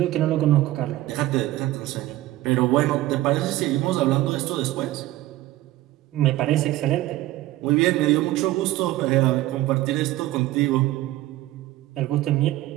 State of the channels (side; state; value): left; quieter; 15.9 dB